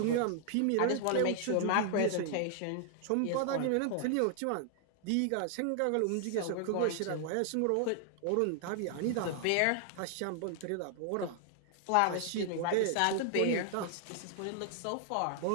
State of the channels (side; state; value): both; different; correlation 0.00